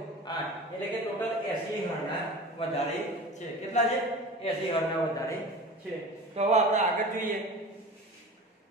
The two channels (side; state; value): both; normal; correlation 0.36